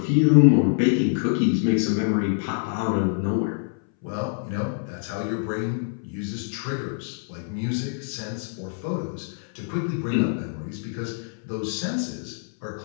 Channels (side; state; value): right; silent; 61 dB below the other